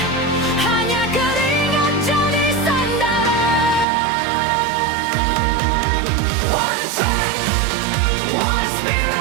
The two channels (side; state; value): left; drops out; at 3.9 s